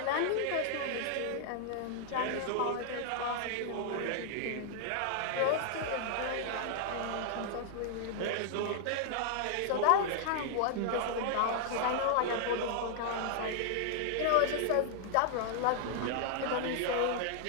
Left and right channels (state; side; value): different; both; correlation -0.01